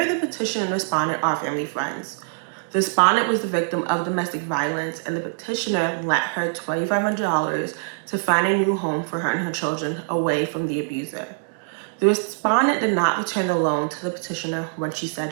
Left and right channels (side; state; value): left; silent; digital silence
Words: the petitioner and respondent are family friends. The respondent was the victim of domestic violence, and the petitioner lent her $2,500 to find a new home for her and her children away from the abuser. The respondent did not return the loan to the petitioner when she